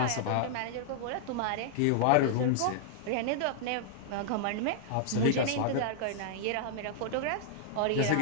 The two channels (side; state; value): both; different; correlation -0.01